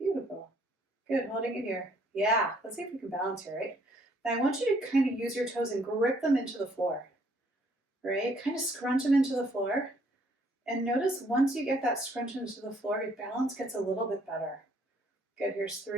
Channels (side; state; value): both; normal; correlation 0.65